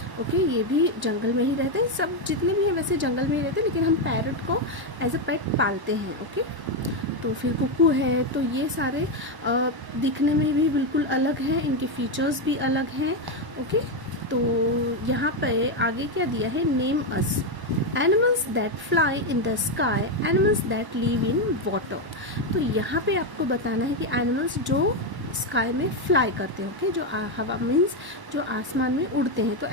ओके, ये भी जंगल में ही रहते हैं। सब जितने भी हैं वैसे जंगल में ही रहते हैं, लेकिन हम पैरट को एज अ पेट पालते हैं। ओके, तो फिर कुकू है। तो ये सारे दिखने में भी बिल्कुल अलग हैं, इनके फीचर्स भी अलग हैं। ओके, तो यहाँ पे आगे क्या दिया है, name us animals that fly in the sky, animals that live in water. तो यहाँ पे आपको बताना है कि एनिमल्स जो स्काई में फ्लाई करते हैं। ओके, जो हवा मीन्स जो आसमान में उड़ते हैं। तो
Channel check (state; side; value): late; left; 1.0 ms